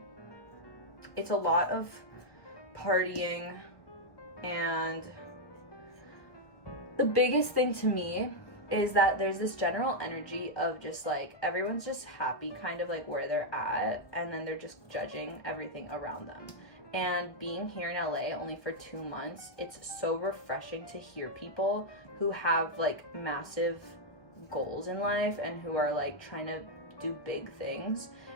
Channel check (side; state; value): right; late; 1.1 ms